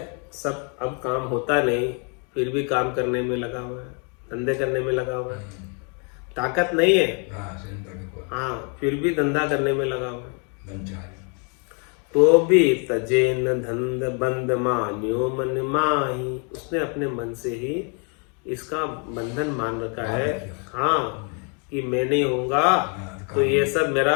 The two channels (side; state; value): right; quieter; 37.6 dB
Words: सब अब काम होता नहीं, फिर भी काम करने में लगा हुआ है, धंधे करने में लगा हुआ है। ताकत नहीं है, हाँ, फिर भी धंधा करने में लगा हुआ है। तो भी तजे न धंध बंद मान्यो मन माही। उसने अपने मन से ही इसका बंधन मान रखा है, हाँ, कि मैं नहीं होऊंगा तो ये सब मेरा